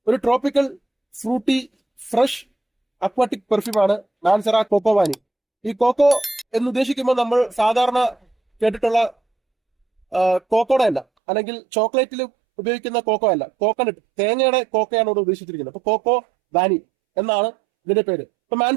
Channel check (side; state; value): left; drops out; at 11.1 s